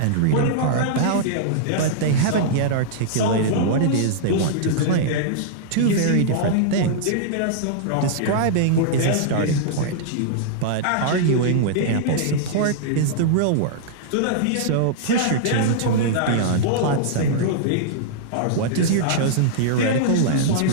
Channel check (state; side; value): different; both; correlation -0.02